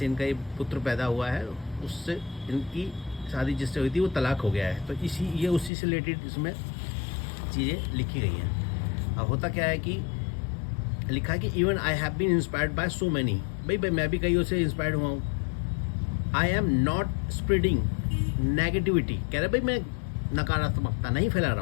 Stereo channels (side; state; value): right; drops out; at 5.7 s